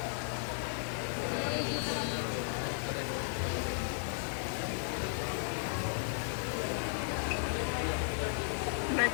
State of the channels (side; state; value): right; silent; 54 dB below the other